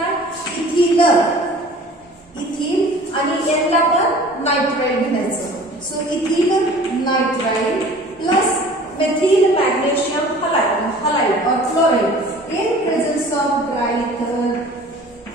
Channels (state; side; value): normal; both; correlation 0.46